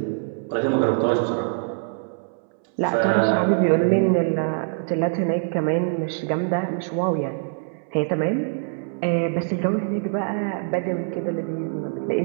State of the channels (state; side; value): silent; left; 63 dB below the other